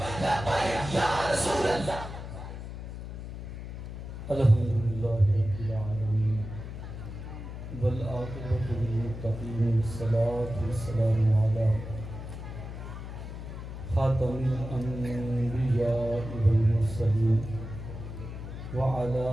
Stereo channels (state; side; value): noise; left; hum, 9 dB below the sound